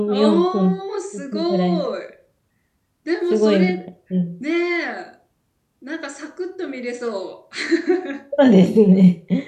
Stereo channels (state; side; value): identical; both; correlation 1.00